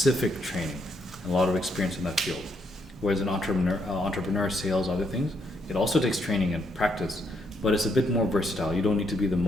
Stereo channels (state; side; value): normal; both; correlation 0.76